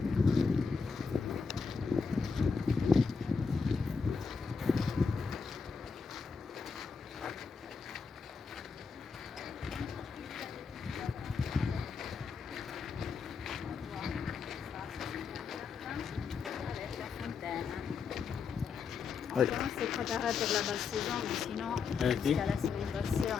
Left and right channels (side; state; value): right; quieter; 5.4 dB